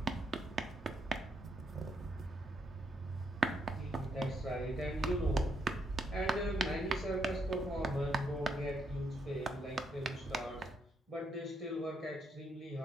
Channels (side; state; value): both; normal; correlation 0.76